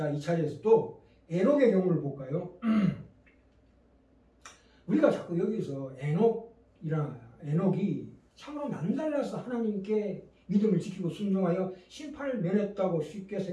이 차례에서 또 에녹의 경우를 볼까요? 우리가 자꾸 여기서 에녹이 참으로 남달라서 하나님께 믿음을 지키고 순종하여 심판을 면했다고 쉽게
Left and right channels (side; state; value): both; identical; correlation 1.00